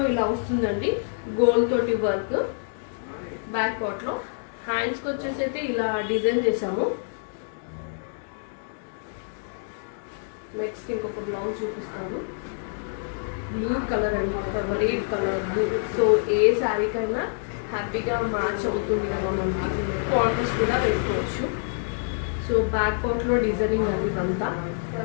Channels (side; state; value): right; silent; digital silence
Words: ఇలా వస్తుందండి, గోల్డ్ తోటి వర్క్. బ్యాక్ పార్ట్ లో హ్యాండ్స్ కి వచ్చేసి అయితే ఇలా డిజైన్ చేసాము. నెక్స్ట్ ఇంకొక బ్లౌజ్ చూపిస్తాను. బ్లూ కలర్ అండి, ఫేవరెట్ కలర్ బ్లూ. సో ఏ శారీకైనా హ్యాపీగా మ్యాచ్ అవుతుంది కదా, మనకి కాంట్రాస్ట్ కూడా వేసుకోవచ్చు. సో బ్యాక్ పార్ట్లో డిజైనింగ్ అది ఇదంతా.